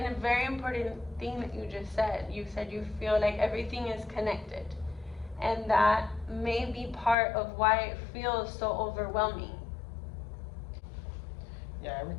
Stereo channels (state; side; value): drops out; right; at 7.2 s